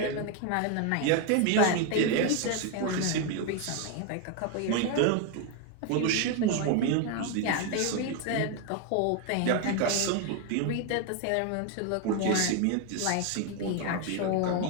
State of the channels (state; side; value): different; both; correlation 0.01